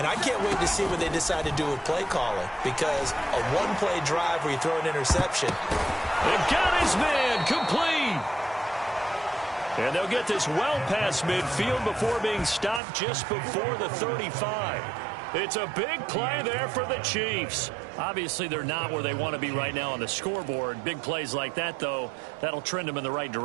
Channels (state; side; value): drops out; left; at 12.8 s